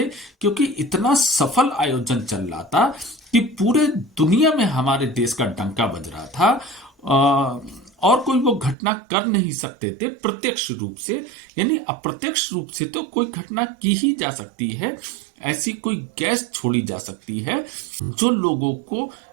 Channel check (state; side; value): drops out; left; at 8.8 s